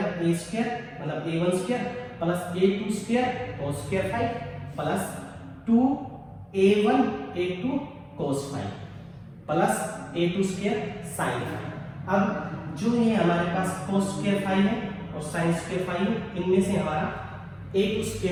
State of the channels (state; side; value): identical; both; correlation 1.00